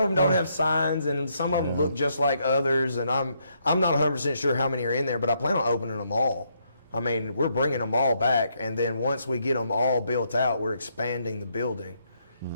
them don't have signs, and some of them look just like others, and I'm not 100% sure how many are in there, but I plan on opening them all. I mean, we're bringing them all back, and then once we get them all built out, we're expanding the building.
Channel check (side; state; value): both; inverted; correlation -0.75